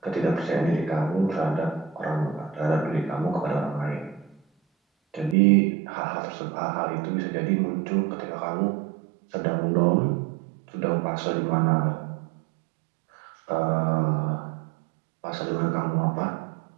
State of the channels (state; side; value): drops out; left; at 5.4 s